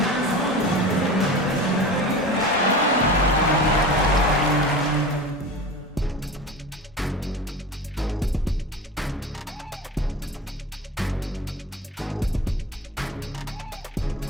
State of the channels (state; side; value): normal; both; correlation 0.33